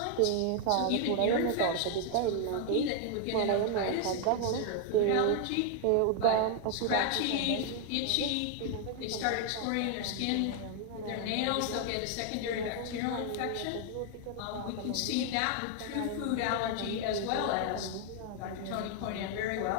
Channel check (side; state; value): both; different; correlation 0.00